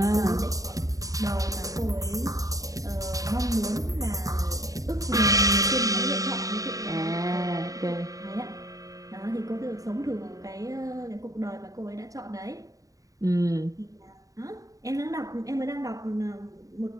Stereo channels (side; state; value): left; late; 0.17 ms